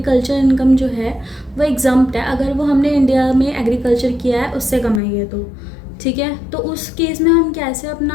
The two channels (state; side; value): drops out; right; at 5.0 s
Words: इनकम जो है वो एग्जम्प्ट है अगर वो हमने इंडिया में एग्रीकल्चर किया है, उससे कमाई है तो ठीक है। तो उस केस में हम कैसे